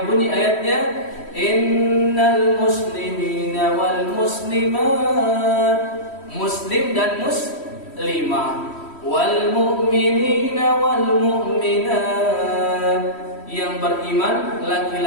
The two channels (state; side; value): late; right; 3.1 ms